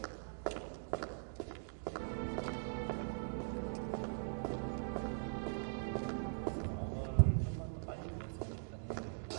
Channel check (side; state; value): left; silent; digital silence